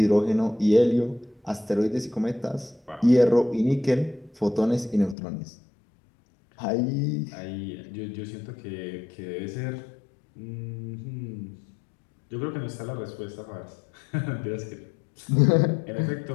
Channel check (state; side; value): drops out; right; at 5.2 s